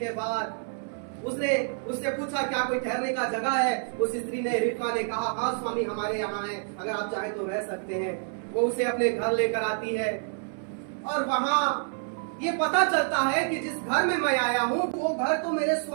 बाद उसने उससे पूछा क्या कोई ठहरने का जगह है। उस स्त्री ने, रिबका ने कहा हाँ स्वामी हमारे यहाँ है, अगर आप चाहे तो रह सकते हैं। वो उसे अपने घर लेकर आती है और वहां ये पता चलता है कि जिस घर में मैं आया हूँ वो घर तो मेरे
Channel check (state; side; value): silent; left; 59 dB below the other